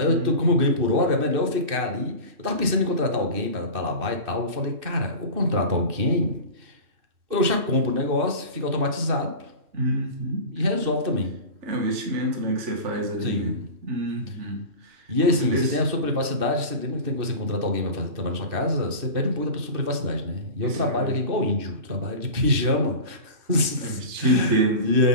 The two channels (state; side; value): late; left; 2.6 ms